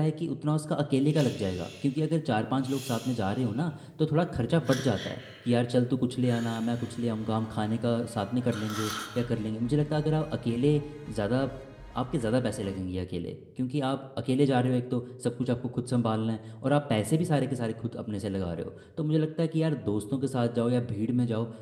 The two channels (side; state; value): both; identical; correlation 1.00